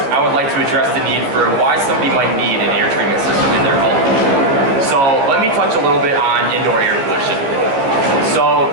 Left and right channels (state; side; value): late; left; 14 ms